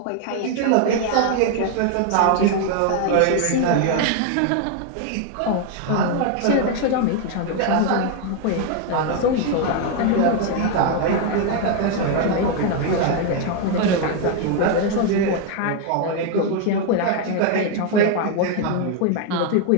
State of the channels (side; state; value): both; different; correlation 0.01